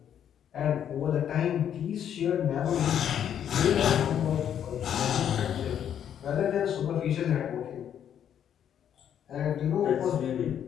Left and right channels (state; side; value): quieter; right; 9.4 dB